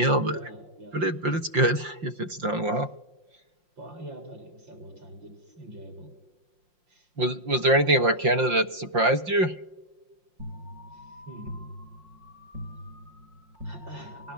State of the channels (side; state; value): left; late; 5.7 ms